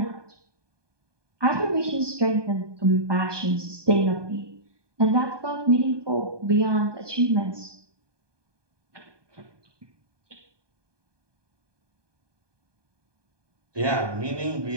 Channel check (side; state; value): left; late; 1.2 ms